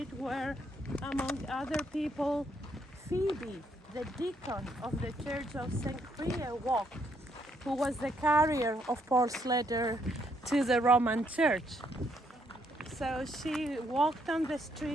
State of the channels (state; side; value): normal; both; correlation 0.72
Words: where, among other people, Phoebe, the deacon of the Church of St. Crea, walked, who was the carrier of Paul's letter to the Roman Church. So she walked on the